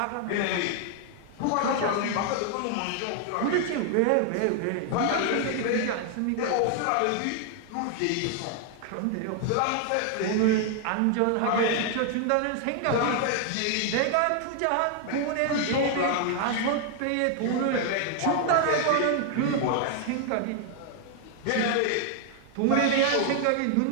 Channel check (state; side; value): different; both; correlation 0.00